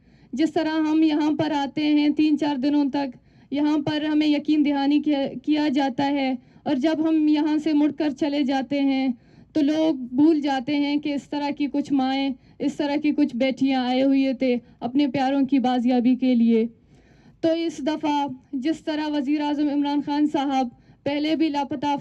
جس طرح ہم یہاں پر آتے ہیں 3-4 دنوں تک یہاں پر ہمیں یقین دہانی کیا جاتا ہے، اور جب ہم یہاں سے مڑ کر چلے جاتے ہیں تو لوگ بھول جاتے ہیں کہ اس طرح کی کچھ مائیں، اس طرح کی کچھ بیٹیاں آئے ہوئے تھے اپنے پیاروں کی بازیابی کے لیے۔ تو اس دفعہ جس طرح وزیر اعظم عمران خان صاحب پہلے بھی لاپتہ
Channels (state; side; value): identical; both; correlation 1.00